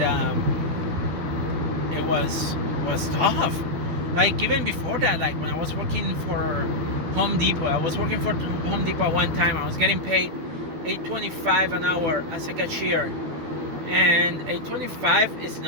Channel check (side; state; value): left; late; 12 ms